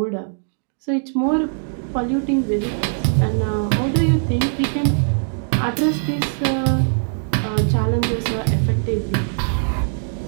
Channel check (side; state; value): left; silent; digital silence